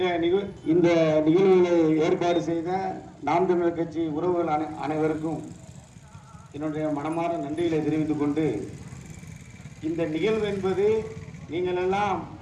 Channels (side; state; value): both; identical; correlation 1.00